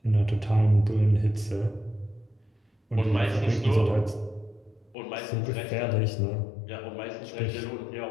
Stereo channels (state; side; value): drops out; right; at 5.0 s